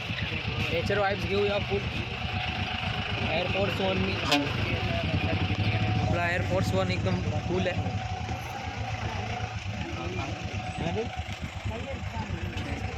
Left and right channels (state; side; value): identical; both; correlation 1.00